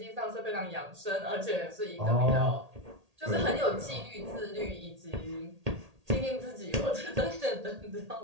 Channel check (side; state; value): left; late; 1.8 ms